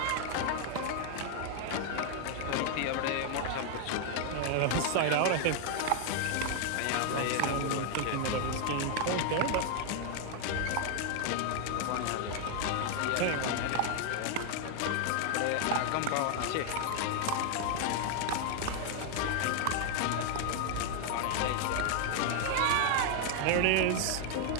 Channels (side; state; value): both; different; correlation 0.00